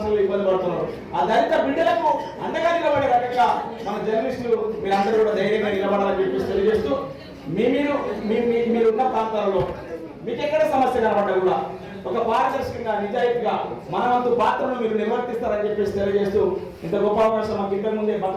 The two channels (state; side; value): identical; both; correlation 1.00